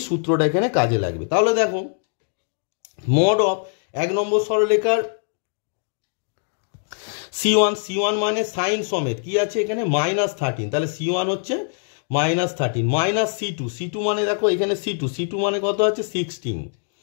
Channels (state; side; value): silent; right; digital silence